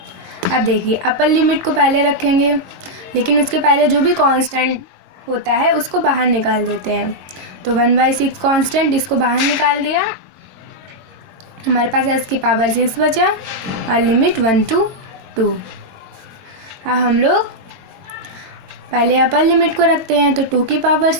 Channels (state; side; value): late; left; 22 ms